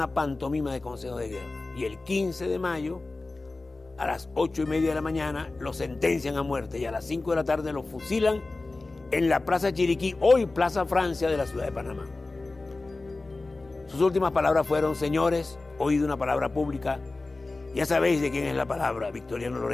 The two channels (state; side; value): quieter; right; 3.3 dB